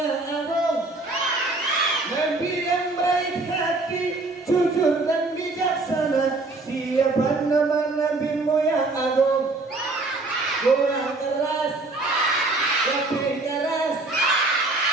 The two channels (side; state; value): left; quieter; 3.3 dB